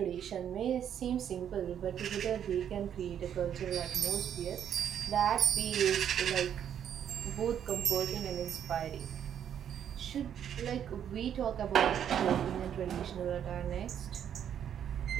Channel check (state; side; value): quieter; left; 9.2 dB